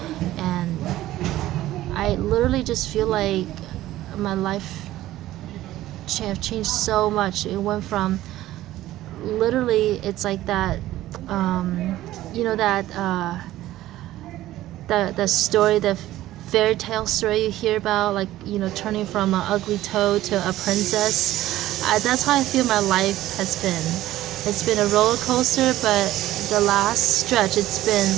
And I literally just feel like my life have changed so much. It went from literally, it's like that, the story, the fairy tale story you hear about, like, turning from an ugly toad to a princess. That's how I feel my life has been. It's been a roller coaster, but the last stretch, it's been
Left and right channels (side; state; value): left; quieter; 15.0 dB